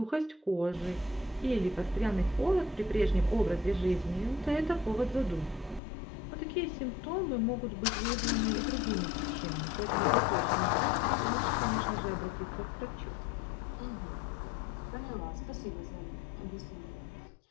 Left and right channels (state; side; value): drops out; right; at 5.8 s